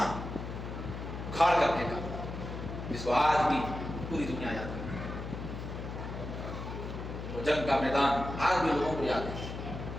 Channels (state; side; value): noise; left; hum, 7 dB below the sound